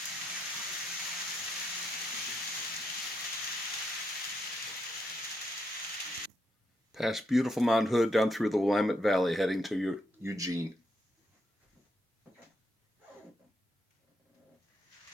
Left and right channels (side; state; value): both; normal; correlation 0.79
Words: Past beautiful Mount Hood down through the Willamette Valley heading to Eugene.